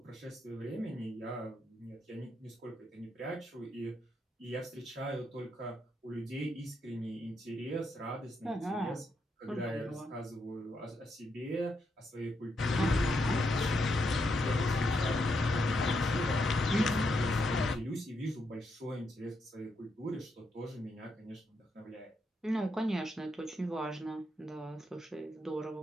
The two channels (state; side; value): normal; both; correlation 0.80